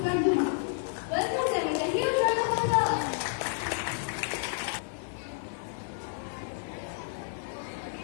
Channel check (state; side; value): silent; right; digital silence